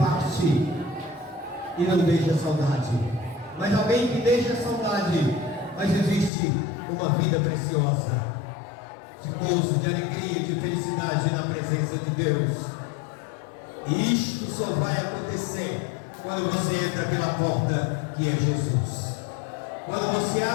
e não deixa saudade, mas alguém que deixa saudade, mas existe uma vida preciosa, de gozo, de alegria, de felicidade na presença de Deus. E isto só vai acontecer quando você entra pela porta que é Jesus, quando você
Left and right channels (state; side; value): drops out; right; at 6.3 s